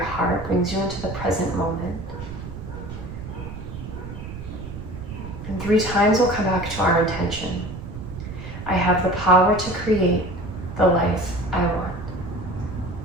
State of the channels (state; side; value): noise; right; rumble, 10 dB below the sound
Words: heart brings you into the present moment. And 3 times we'll come back to our intention. I have the power to create the life I want.